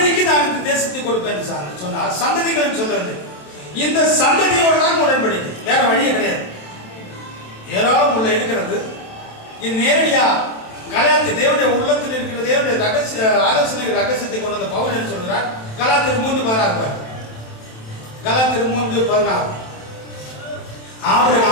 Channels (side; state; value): right; late; 27 ms